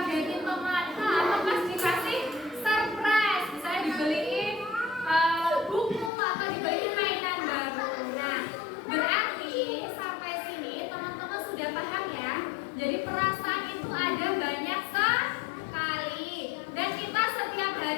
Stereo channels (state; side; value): drops out; right; at 6.1 s